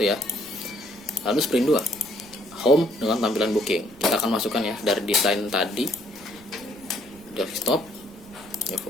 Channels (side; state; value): right; noise; rumble, 24 dB below the sound